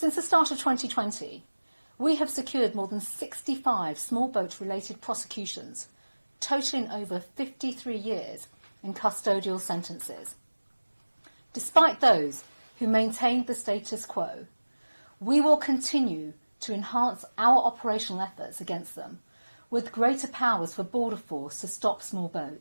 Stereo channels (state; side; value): inverted; both; correlation -1.00